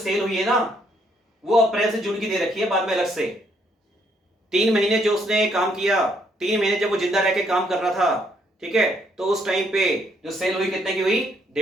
हुई है ना वो अप्रैल से जून की दे रखी है, बाद में अलग से 3 महीने जो उसने काम किया, 3 महीने जब वो जिंदा रह के काम कर रहा था, ठीक है, तो उस टाइम पे जो सेल हुई कितने की हुई,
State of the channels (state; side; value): normal; both; correlation 0.70